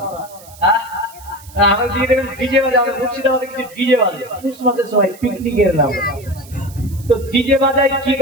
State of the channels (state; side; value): noise; right; hiss, 21 dB below the sound